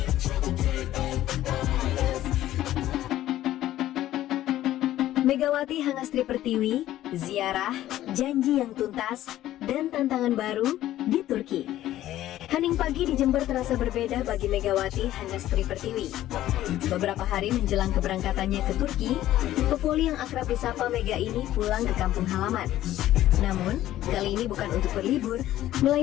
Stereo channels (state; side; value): quieter; right; 13.7 dB